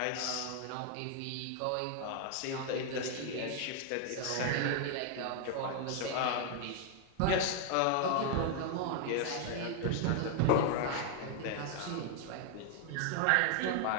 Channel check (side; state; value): both; different; correlation 0.00